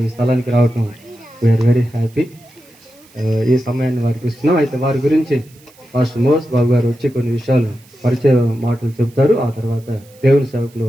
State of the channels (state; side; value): noise; right; hiss, 28 dB below the sound